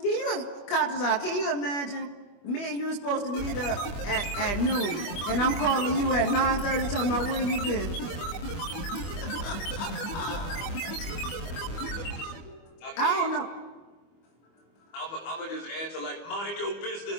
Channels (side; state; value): right; late; 25 ms